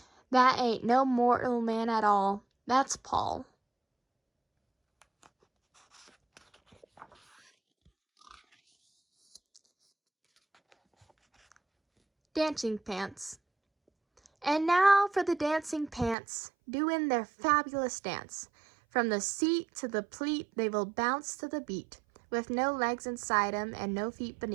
That ain't no mortal man at all. That's Paul. Dancing Pants. And now for the dancing pants, doing their fabulous dance. From the seat to the pleat, they will bounce to the beat, with no legs inside 'em and no feet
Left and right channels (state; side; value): drops out; left; at 16.2 s